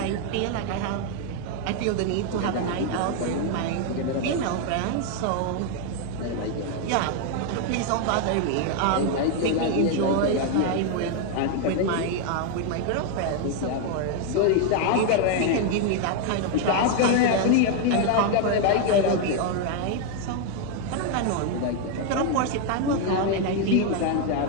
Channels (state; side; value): different; both; correlation 0.01